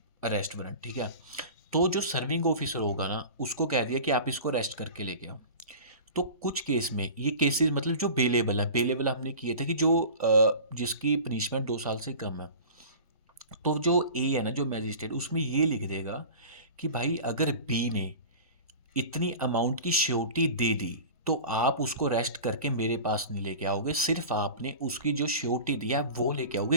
अरेस्ट वारंट, ठीक है। तो जो सर्विंग ऑफिसर होगा ना, उसको कह दिया कि आप इसको अरेस्ट करके लेके आओ। तो कुछ केस में, ये केसेस मतलब जो बेलेबल हमने किए थे कि जो जिसकी पनिशमेंट 2 साल से कम है, तो जो ए है ना, जो मैजिस्ट्रेट, उसमें ये लिख देगा कि भाई अगर बी ने इतनी अमाउंट की श्योरिटी दे दी तो आप उसको अरेस्ट करके मेरे पास नहीं लेके आओगे, सिर्फ आपने उसकी जो श्योरिटी दिया है वो लेके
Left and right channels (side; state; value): both; inverted; correlation -0.37